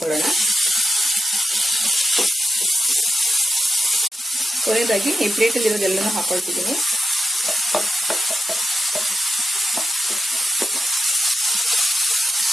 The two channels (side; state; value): both; normal; correlation 0.88